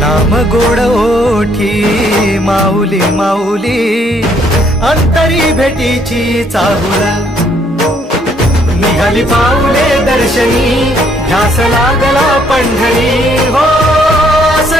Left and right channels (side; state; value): both; normal; correlation 0.67